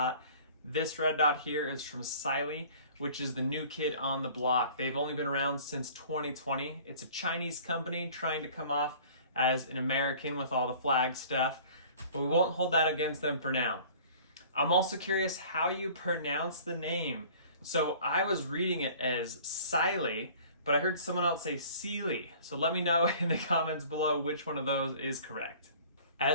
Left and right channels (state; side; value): inverted; both; correlation -0.48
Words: This red dot here is from Cyelee, which is the new kid on the block. They've only been around since 2020. It's a Chinese company trying to come off as an American with all the flag stuff, but we won't hold that against them for now. I'm also curious how you pronounce the name. So I was reading it as Cyelee, but I heard someone else say Cyelee. So let me know in the comments below which one of those is correct.